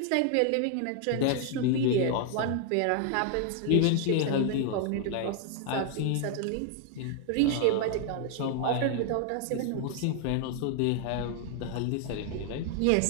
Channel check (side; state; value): both; different; correlation 0.00